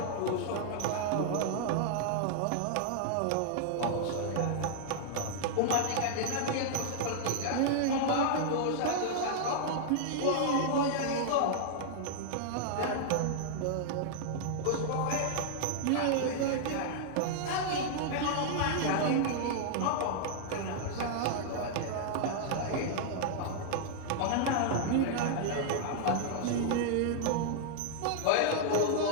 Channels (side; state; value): both; different; correlation -0.01